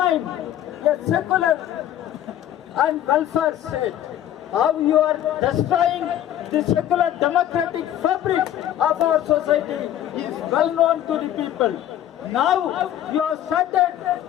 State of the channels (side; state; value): right; quieter; 11.7 dB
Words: a secular and welfare state. How you are destroying the secular democratic fabric of our society is well known to the people. Now you have started